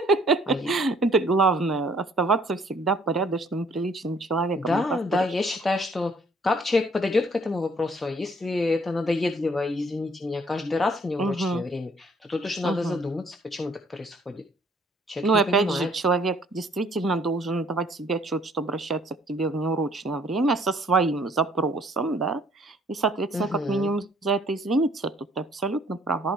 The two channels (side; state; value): both; normal; correlation 0.61